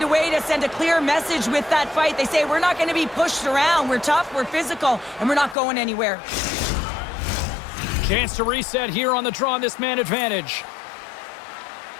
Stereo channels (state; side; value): drops out; right; at 5.6 s